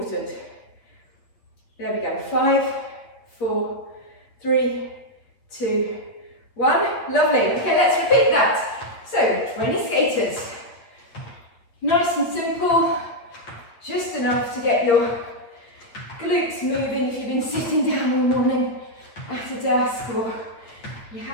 There we go. 5, 4, 3, 2, 1. Lovely. Okay, let's repeat that. So, 20 skaters. Nice and simple. Just enough to get your glutes moving if you've been sitting down all morning at a desk, or you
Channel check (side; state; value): right; late; 8.4 ms